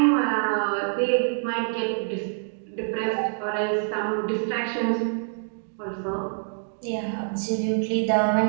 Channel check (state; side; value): silent; left; digital silence